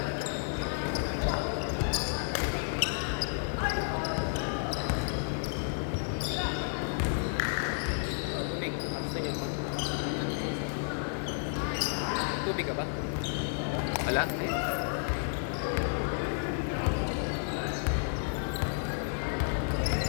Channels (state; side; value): silent; right; digital silence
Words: Tubig ka ba? Wala?